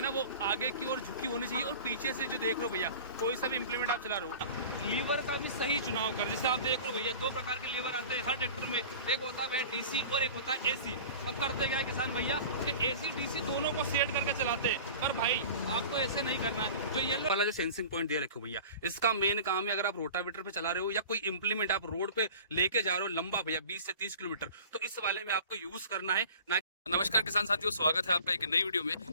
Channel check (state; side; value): inverted; both; correlation -0.40